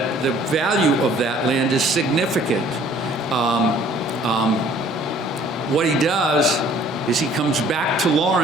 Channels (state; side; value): normal; both; correlation 0.56